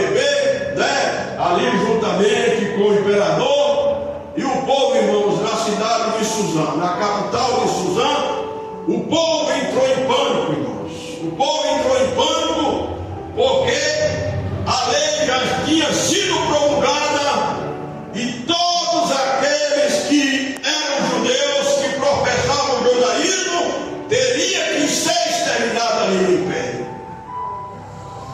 né? Ali juntamente com o imperador. E o povo, irmãos, na cidade de Suzã, na capital de Suzã, o povo entrou em pânico, irmãos. O povo entrou em pânico porque a lei já tinha sido promulgada e todos aqueles que eram judeus, que professavam o judaísmo, teriam que ser exterminados ali no império.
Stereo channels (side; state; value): both; identical; correlation 1.00